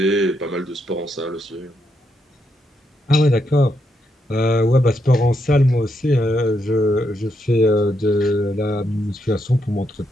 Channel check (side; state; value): both; normal; correlation 0.80